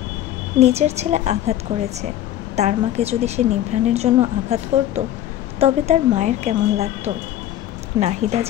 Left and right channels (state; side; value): quieter; right; 12.5 dB